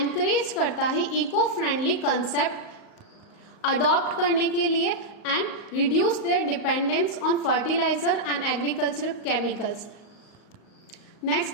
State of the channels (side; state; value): right; late; 38 ms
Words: करता है इको फ्रेंडली कंसेप्ट अडॉप्ट करने के लिए and reduce their dependence on fertiliser and agriculture chemicals.